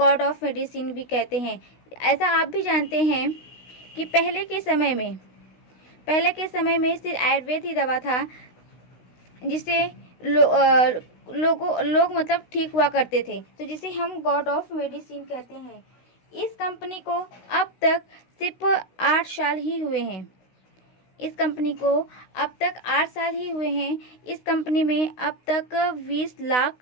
ऑफ मेडिसिन भी कहते हैं। ऐसा आप भी जानते हैं कि पहले के समय में सिर्फ आयुर्वेद ही दवा था, जिसे लोग मतलब ठीक हुआ करते थे, तो जिसे हम गॉड ऑफ मेडिसिन कहते हैं। इस कंपनी को अब तक सिर्फ 8 साल ही हुए हैं। इस कंपनी में अब तक 20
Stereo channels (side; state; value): right; late; 16 ms